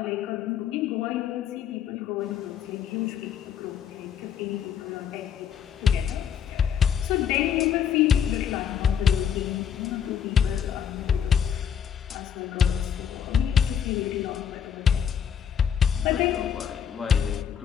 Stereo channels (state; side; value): quieter; right; 8.3 dB